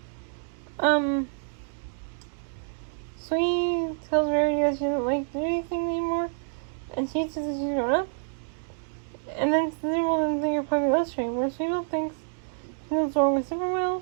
Sweet tells Rarity that she doesn't like to do anything anymore, and she says that she's grown up. And then Zipperwell doesn't think her puppy loves her, where Sweetville thinks she knows what's wrong with Zipperwell.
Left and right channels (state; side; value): silent; left; digital silence